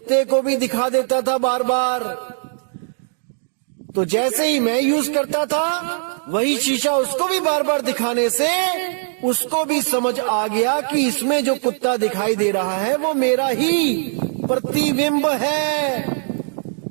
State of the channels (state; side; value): silent; left; digital silence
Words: को भी दिखा देता था बार बार। तो जैसे ही मैं यूज करता था वही शीशा उसको भी बार बार दिखाने से उसको भी समझ आ गया कि इसमें जो कुत्ता दिखाई दे रहा है वो मेरा ही प्रतिबिंब है,